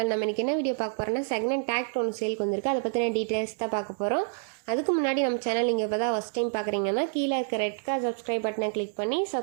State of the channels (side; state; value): left; silent; digital silence